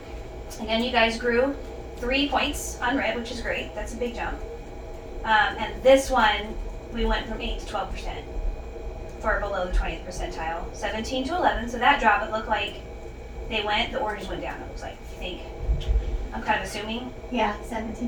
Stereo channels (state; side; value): identical; both; correlation 1.00